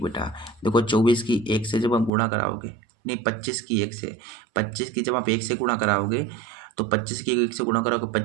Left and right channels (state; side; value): drops out; left; at 2.1 s